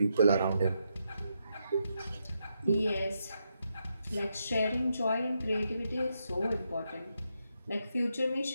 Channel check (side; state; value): both; inverted; correlation -0.82